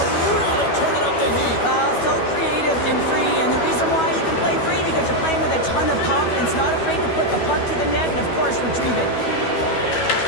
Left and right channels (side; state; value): right; late; 12 ms